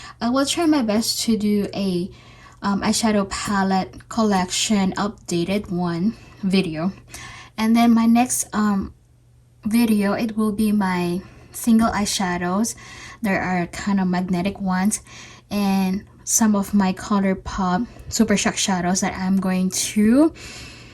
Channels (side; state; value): both; identical; correlation 1.00